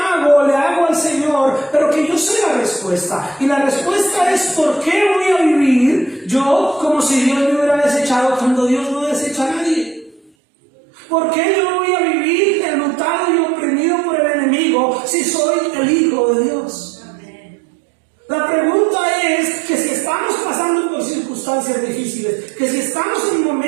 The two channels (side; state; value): left; drops out; at 10.3 s